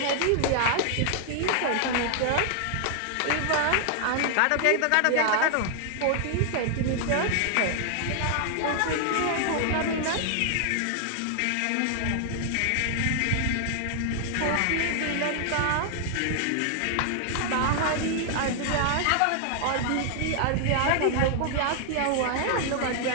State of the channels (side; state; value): both; different; correlation 0.00